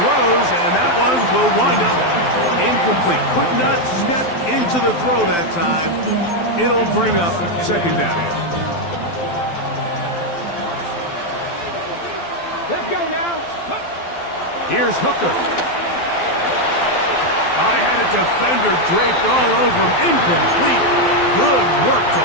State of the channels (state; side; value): late; right; 12 ms